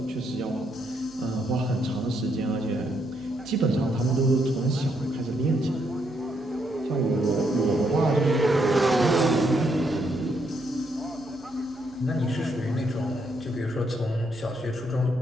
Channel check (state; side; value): noise; left; hum, 26 dB below the sound